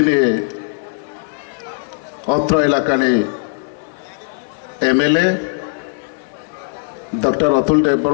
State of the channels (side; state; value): right; silent; 67 dB below the other